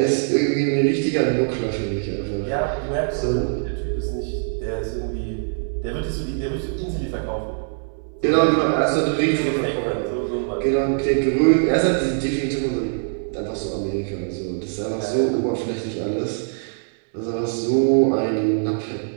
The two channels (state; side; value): silent; left; 64 dB below the other